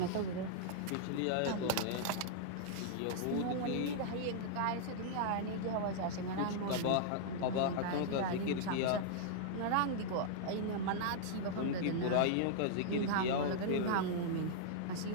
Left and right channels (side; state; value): both; different; correlation -0.01